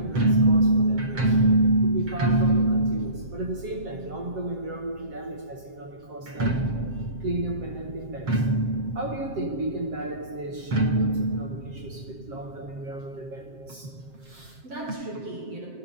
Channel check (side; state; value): left; late; 7.6 ms